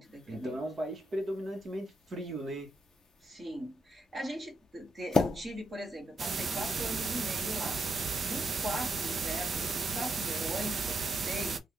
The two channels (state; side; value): normal; both; correlation 0.81